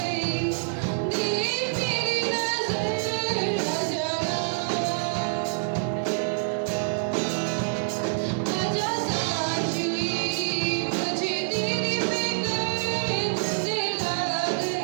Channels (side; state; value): left; silent; 61 dB below the other